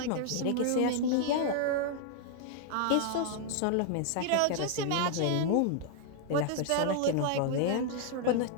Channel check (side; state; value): both; different; correlation 0.00